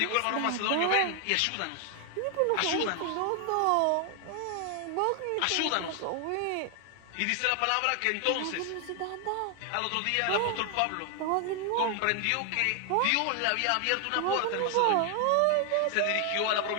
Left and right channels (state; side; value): different; both; correlation 0.00